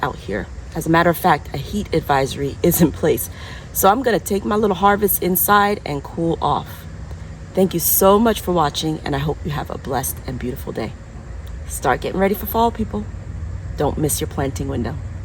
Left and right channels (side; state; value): both; identical; correlation 1.00